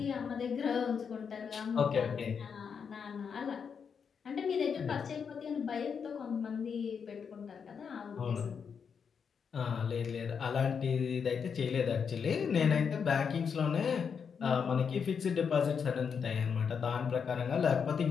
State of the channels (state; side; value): quieter; right; 6.5 dB